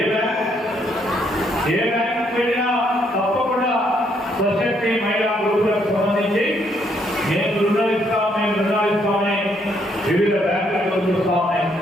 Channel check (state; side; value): normal; both; correlation 0.71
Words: బ్యాంక్ వెళ్ళినా తప్పకుండా సశక్తి మహిళా గ్రూపులకు సంబంధించి మేము రుణాలు ఇస్తామని వివిధ బ్యాంకులకు చూస్తా ఉన్నాయి.